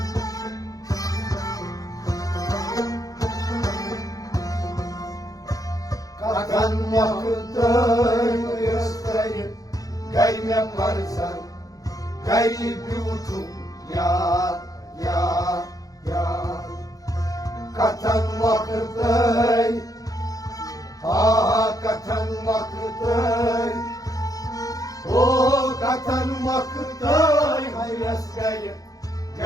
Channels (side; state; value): right; late; 0.17 ms